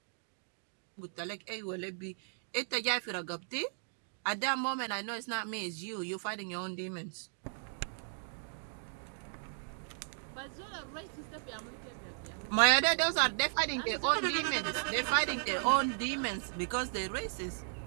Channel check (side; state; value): left; silent; digital silence